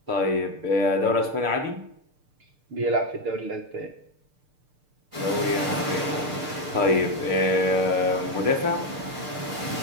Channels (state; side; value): late; left; 6.7 ms